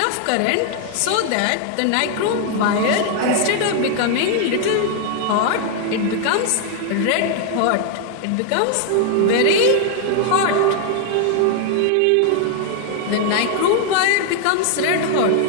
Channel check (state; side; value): different; both; correlation 0.00